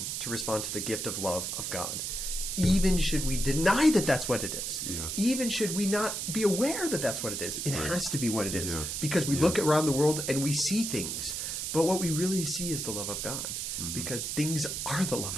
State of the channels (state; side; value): noise; right; hiss, 3 dB below the sound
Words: to respond to the gift of love of God. Even should we deny that that's what it is, even should we not be aware that that's what it is, it has to be what it is, because we look around the world and we see things, but what we really see is the love of God, because things are the